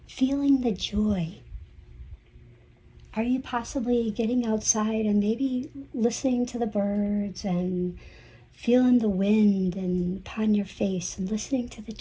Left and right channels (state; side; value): identical; both; correlation 1.00